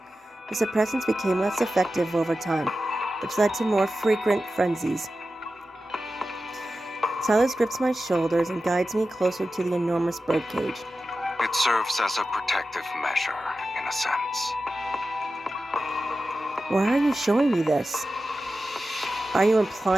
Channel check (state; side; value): normal; both; correlation 0.93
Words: The suppressants became less effective over time, which led to more frequent frenzies. Sylus grips my shoulders and guides me closer to the enormous birdcage. It serves as a protective measure, in a sense. Why are you showing me this? Are you